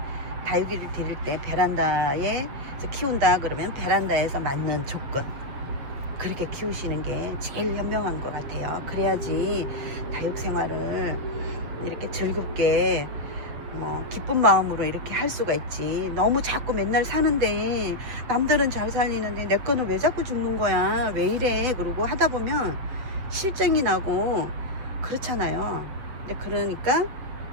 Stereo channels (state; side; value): late; left; 7.6 ms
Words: 다육이를 기를 때 베란다에 키운다 그러면 베란다에서 맞는 조건 그렇게 키우시는 게 제일 현명한 것 같아요. 그래야지 다육 생활을 이렇게 즐겁게 뭐 기쁜 마음으로 이렇게 할 수가 있지. 너무 자꾸 맨날 사는데 남들은 잘 살리는데 내 거는 왜 자꾸 죽는 거야 왜 이래 그러고 하다 보면 실증이 나고 그렇잖아요. 근데 그러니까